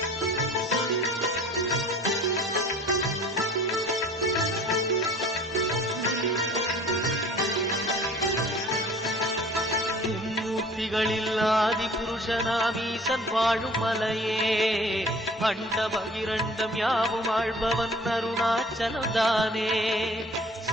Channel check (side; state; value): both; normal; correlation 0.48